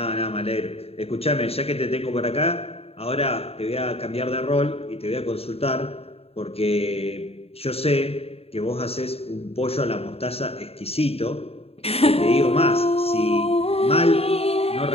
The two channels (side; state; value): right; late; 0.29 ms